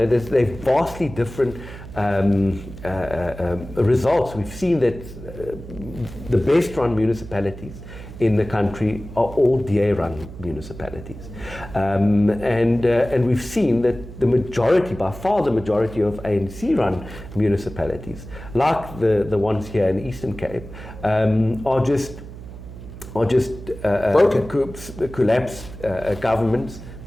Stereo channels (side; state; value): right; noise; hum, 14 dB below the sound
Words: vastly different results. We've seen that the best run municipalities in the country are all DA-run municipalities, and we've seen that by far the majority of ANC-run municipalities, like the ones here in the Eastern Cape, are just collapsed governments,